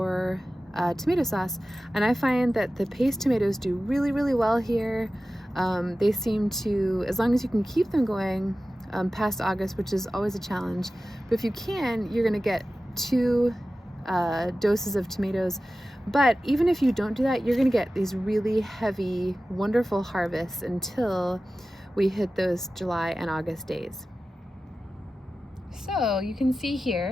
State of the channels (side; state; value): both; normal; correlation 0.95